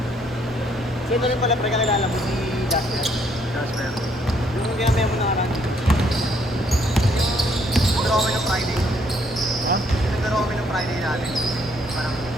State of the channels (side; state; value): both; normal; correlation 0.68